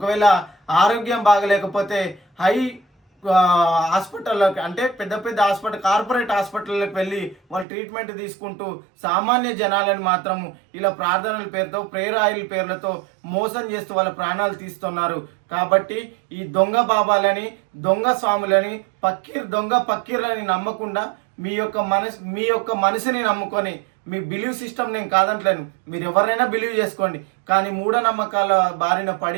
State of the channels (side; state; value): left; drops out; at 7.7 s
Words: ఆరోగ్యం బాగలేకపోతే హై హాస్పిటల్లోకి అంటే పెద్ద పెద్ద హాస్పిటల్ కార్పొరేట్ హాస్పిటల్లోకి వెళ్ళి వాళ్ళు ట్రీట్మెంట్ తీసుకుంటూ సామాన్య జనాలను మాత్రము ఇలా ప్రార్థనల పేరుతో ప్రేయర్ ఆయిల్ పేర్లతో మోసం చేస్తూ వాళ్ళ ప్రాణాలు తీస్తున్నారు. కాబట్టి ఈ దొంగ బాబాలని దొంగ స్వాములని దొంగ పక్కీర్లని నమ్మకుండా మీ యొక్క మనసుని నమ్ముకొని మీ బిలీవ్ సిస్టమ్ నేను కాదంటలేను, మీరు ఎవరైనా బిలీవ్ చేసుకోండి. కానీ మూఢనమ్మకాల బారిన